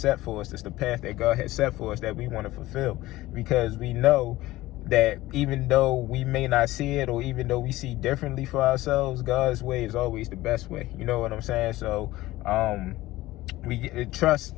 for us. It's the path that God has set for us that we want to fulfill, because we know that even though we may not see it, or even though we see differently for ourselves, God's way is always the best way. You know what I'm saying? So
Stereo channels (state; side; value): quieter; right; 17.4 dB